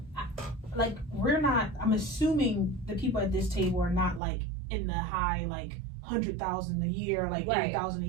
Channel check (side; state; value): left; drops out; at 4.2 s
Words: like we're not. I'm assuming the people at this table are not like in the high like 100,000 a year, like Right. 80,000 a